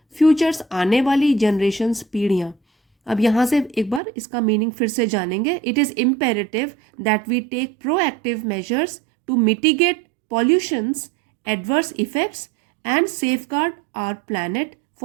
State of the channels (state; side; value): drops out; left; at 4.0 s